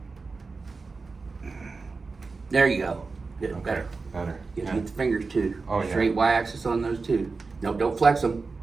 There you go. Good, Okay. better. Better. You Yeah. get the fingers too. Oh, yeah. Straight y-axis on those two. No, don't flex them.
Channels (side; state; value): left; quieter; 4.2 dB